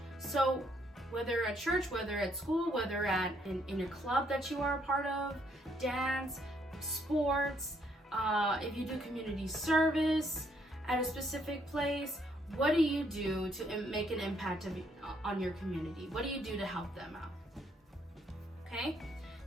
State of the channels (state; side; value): normal; both; correlation 0.70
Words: So whether at church, whether at school, whether in a club that you are a part of, dance, sports, if you do community service at a specific place, what do you do to make an impact on your community? What do you do to help them out? Okay,